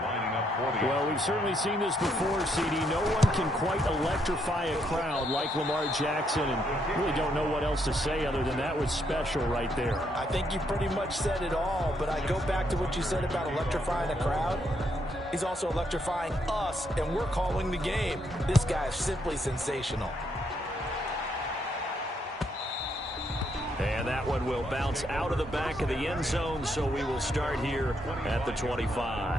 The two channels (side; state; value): both; normal; correlation 0.75